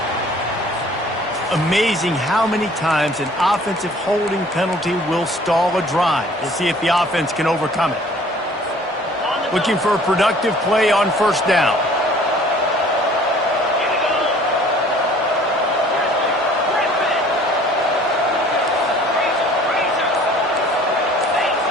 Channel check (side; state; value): both; normal; correlation 0.52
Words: Amazing how many times an offensive holding penalty will stall a drive. We'll see if the offense can overcome it. Looking for a productive play on 1st down.